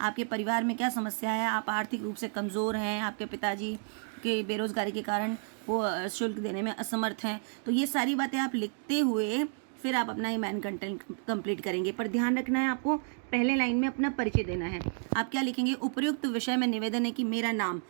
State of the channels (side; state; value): left; silent; 57 dB below the other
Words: आपके परिवार में क्या समस्या है, आप आर्थिक रूप से कमज़ोर हैं, आपके पिताजी के बेरोज़गारी के कारण वो शुल्क देने में असमर्थ हैं। तो ये सारी बातें आप लिखते हुए फिर आप अपना ये मेन कंटेंट कंप्लीट करेंगे। पर ध्यान रखना है आपको, पहले लाइन में अपना परिचय देना है। आप क्या लिखेंगे, उपयुक्त विषय में निवेदन है कि मेरा